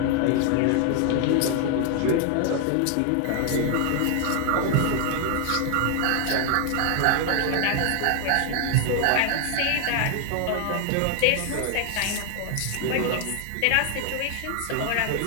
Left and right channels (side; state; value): both; different; correlation 0.00